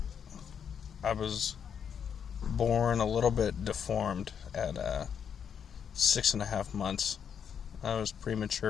I was born a little bit deformed at 6.5 months. I was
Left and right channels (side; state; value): right; quieter; 7.7 dB